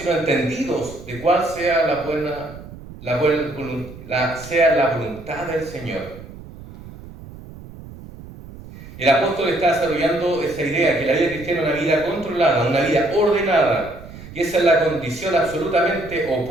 entendidos de cuál sea la voluntad del Señor. El apóstol está desarrollando esa idea, que la vida cristiana es una vida controlada, una vida ordenada, y esa es la condición absolutamente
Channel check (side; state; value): right; noise; rumble, 16 dB below the sound